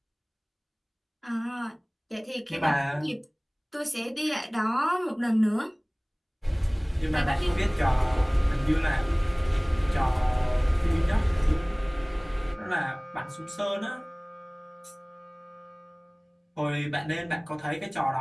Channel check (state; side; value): identical; both; correlation 1.00